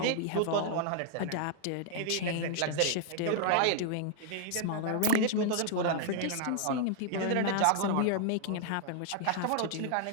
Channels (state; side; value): different; both; correlation 0.00